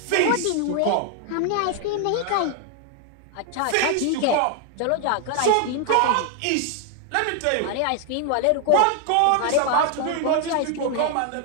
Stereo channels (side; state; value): both; different; correlation 0.00